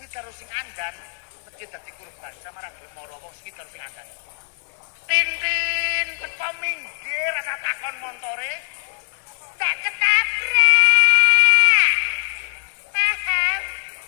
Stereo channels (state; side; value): silent; right; 63 dB below the other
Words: karo sing ngandan mesti dadi kurban sama ra gelem mara wong sengit karo sing ngandan Tintin teko minggir rasa takon montore. Ndak ketabrak. Paham?